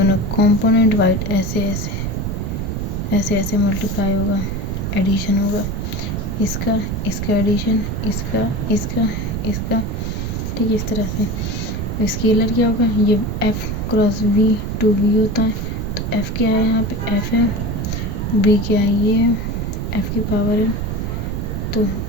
कंपोनेंट वाइड ऐसे ऐसे ऐसे मल्टीप्लाई होगा, एडिशन होगा, इसका इसका एडिशन, इसका इसका इसका, ठीक है, इस तरह से। स्केलर क्या होगा, ये f cross v to v होता है। तो f क्या है, यहाँ पे f है, v क्या है, ये है, f की पावर है, तो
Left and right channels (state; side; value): noise; right; rumble, 2 dB below the sound